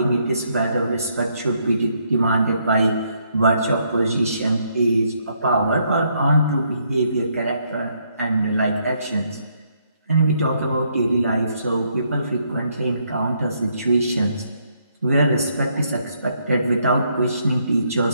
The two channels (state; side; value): inverted; both; correlation -0.73